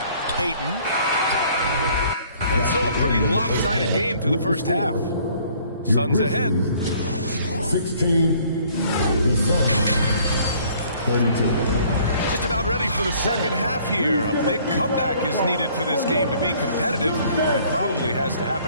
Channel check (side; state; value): both; inverted; correlation -0.58